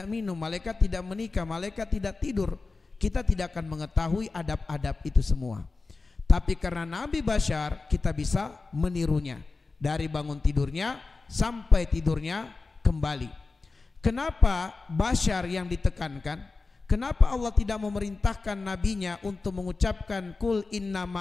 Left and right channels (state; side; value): quieter; right; 3.9 dB